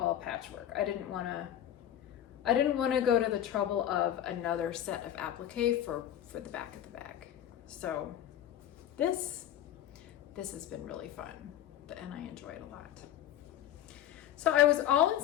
patchwork. I didn't want to go to the trouble of another set of applique for the back of the bag. So this has been really fun, and I enjoy it a lot. So I was all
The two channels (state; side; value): quieter; right; 11.4 dB